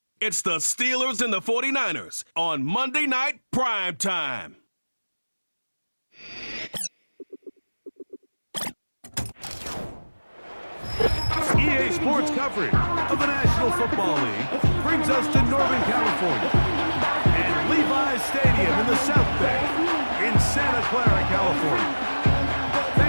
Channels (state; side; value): inverted; both; correlation -1.00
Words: It's the Steelers and the 49ers on Monday Night Prime Time. EA Sports coverage of the National Football League brings us to Northern California and Levi's Stadium in the South Bay in Santa Clara, California.